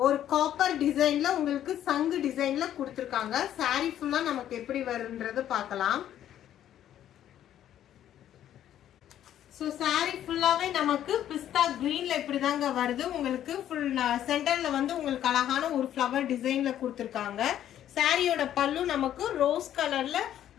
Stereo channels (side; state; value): right; quieter; 11.2 dB